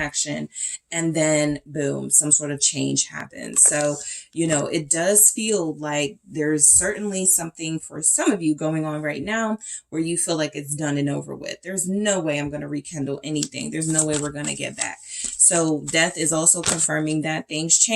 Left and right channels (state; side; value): identical; both; correlation 1.00